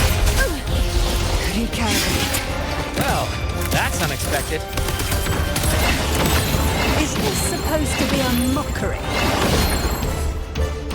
Recalibrate. Well, that's unexpected. Is this supposed to be a mockery?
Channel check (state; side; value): identical; both; correlation 1.00